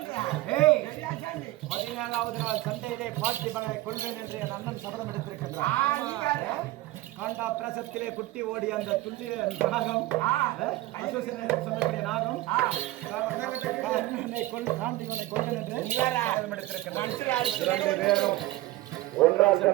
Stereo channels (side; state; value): left; quieter; 17.2 dB